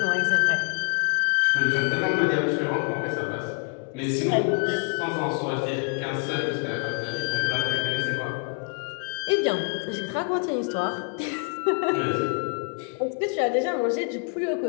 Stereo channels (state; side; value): quieter; right; 39.6 dB